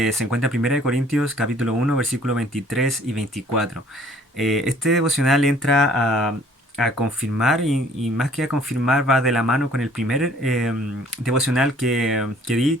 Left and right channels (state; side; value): normal; both; correlation 0.57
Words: encuentra en 1 Corintios capítulo 1 versículos 23 y 24. Este devocional entra a confirmar y más que a confirmar va de la mano con el primer devocional que di,